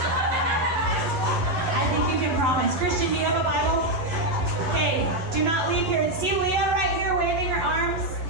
I think you can promise. Christian, do you have a Bible? Okay, do not leave here. See Leah right here waving her arms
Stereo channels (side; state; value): left; late; 11 ms